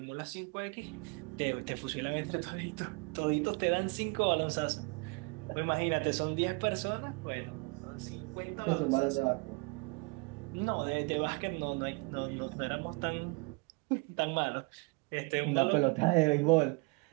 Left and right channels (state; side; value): quieter; left; 29.9 dB